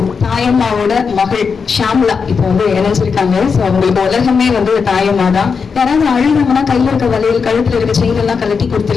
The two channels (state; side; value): quieter; right; 5.6 dB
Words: தாயம்மாவோட மகள் ஷாம்லா இப்போ வந்து இணைஞ்சிருக்காங்க. ஸோ அவங்களுக்கு உலகமே வந்து தாயம்மா தான். யாராவது அழுதாங்கன்னா கையில் இருக்க வளையல் கழுத்தில் இருக்க செயின் எல்லாம் கழட்டி